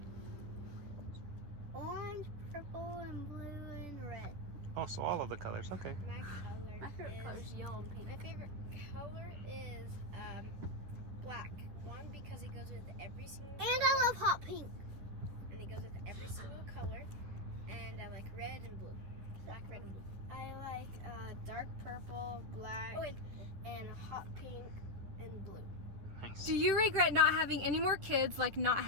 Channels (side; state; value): left; late; 11 ms